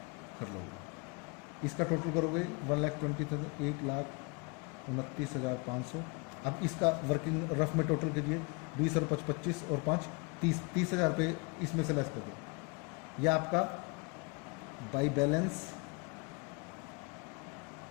कर लोगे। इसका टोटल करोगे 1,20,000, 1,29,500। अब इसका वर्किंग रफ में टोटल कीजिए, 20 और 5 25 और 5 30,000 रुपये इसमें से लेस कर दो। यह आपका by balance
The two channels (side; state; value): right; quieter; 29.8 dB